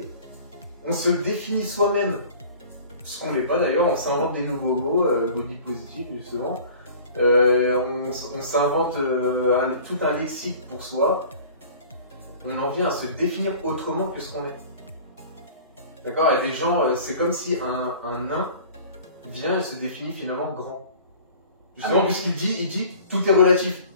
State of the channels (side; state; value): both; inverted; correlation -0.45